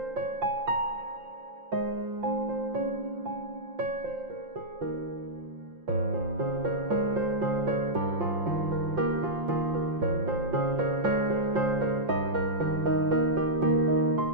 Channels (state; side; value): late; left; 5.7 ms